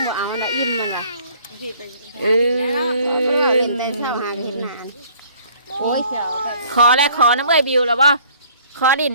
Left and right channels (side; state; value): both; inverted; correlation -0.56